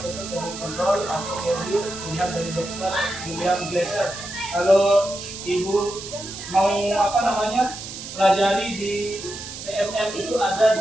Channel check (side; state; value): right; noise; hiss, 10 dB below the sound